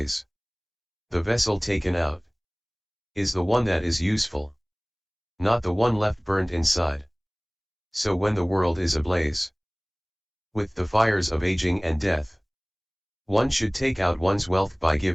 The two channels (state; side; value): identical; both; correlation 1.00